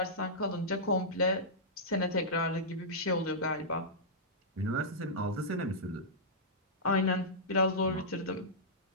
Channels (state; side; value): normal; both; correlation -0.14